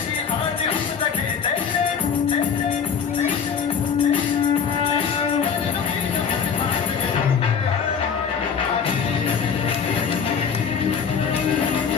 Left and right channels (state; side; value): quieter; right; 6.7 dB